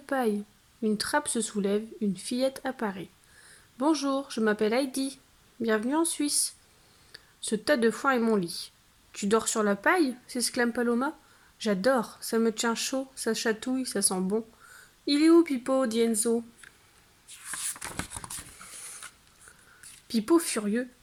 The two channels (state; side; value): identical; both; correlation 1.00